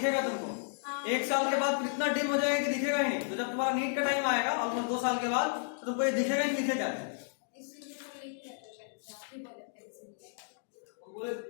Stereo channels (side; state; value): right; silent; digital silence